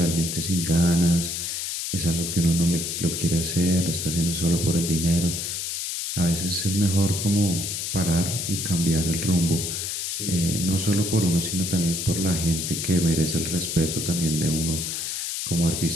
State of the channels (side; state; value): left; noise; hiss, 3 dB below the sound